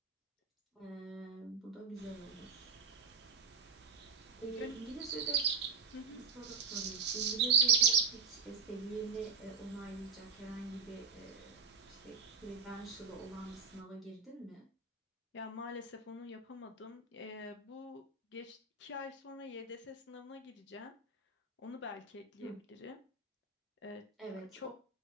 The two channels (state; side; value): quieter; left; 5.4 dB